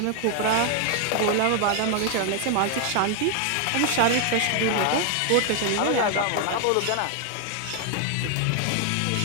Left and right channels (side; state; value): both; different; correlation 0.00